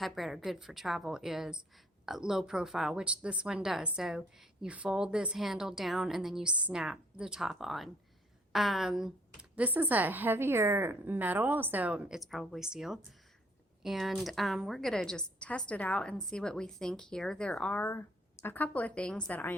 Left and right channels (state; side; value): normal; both; correlation 0.62